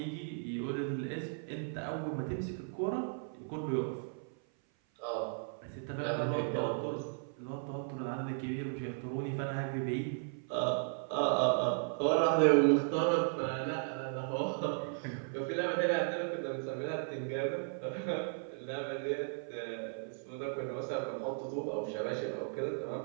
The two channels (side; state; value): left; silent; 54 dB below the other